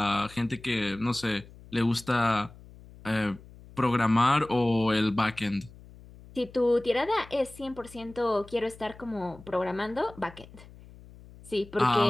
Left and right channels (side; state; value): left; noise; hum, 20 dB below the sound